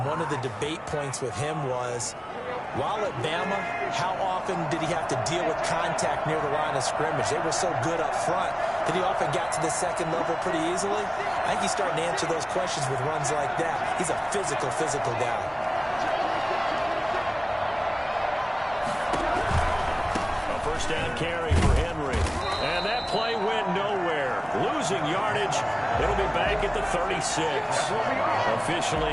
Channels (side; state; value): both; identical; correlation 1.00